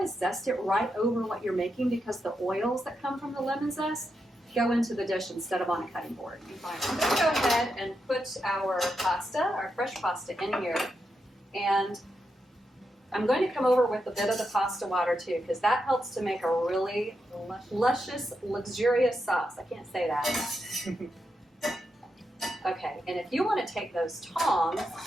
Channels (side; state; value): both; normal; correlation 0.85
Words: zest it right over what you're making because the oils that come from the lemon zest go into the dish instead of on a cutting board. I'm going to go ahead and put our pasta, our fresh pasta, in here. And I'm going to come over with a bit of the pasta water too, because that helps to make a really luscious, luxurious sauce. I can't say that. Okay, and if you want to take those tongs